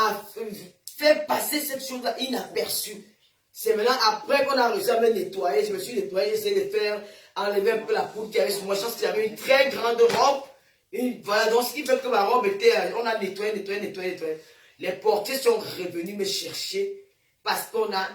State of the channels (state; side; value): identical; both; correlation 1.00